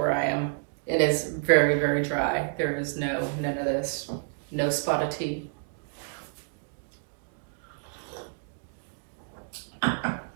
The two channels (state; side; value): silent; left; digital silence